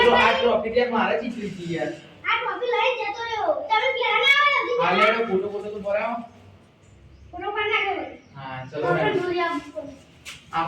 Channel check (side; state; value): both; identical; correlation 1.00